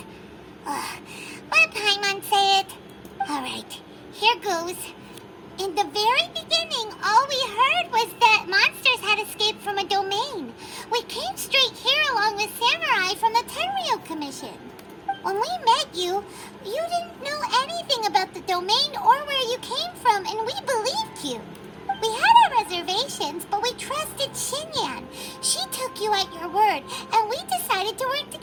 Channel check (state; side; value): identical; both; correlation 1.00